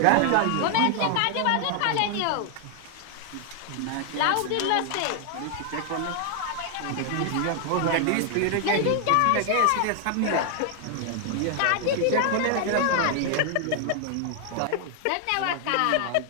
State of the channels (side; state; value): both; different; correlation 0.00